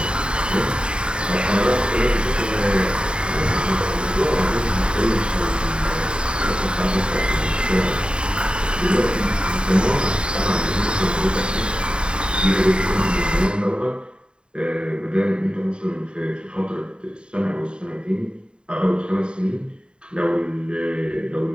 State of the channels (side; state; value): left; late; 0.051 ms